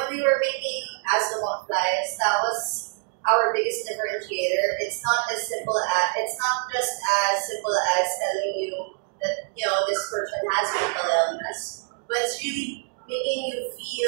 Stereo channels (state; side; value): silent; left; digital silence